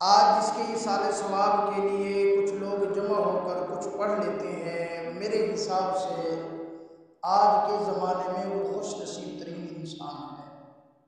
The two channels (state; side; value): identical; both; correlation 1.00